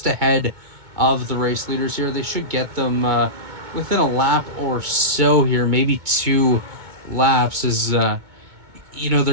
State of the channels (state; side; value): late; left; 2.2 ms